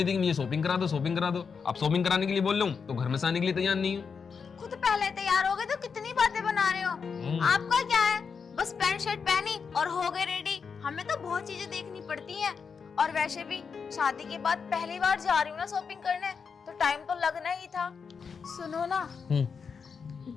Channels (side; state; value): right; quieter; 5.8 dB